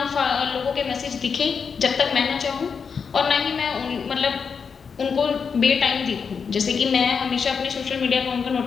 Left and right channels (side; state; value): right; quieter; 6.0 dB